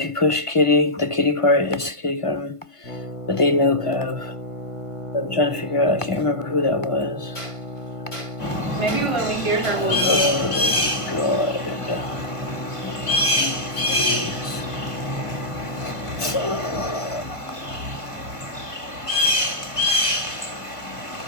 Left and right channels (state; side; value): late; right; 1.5 ms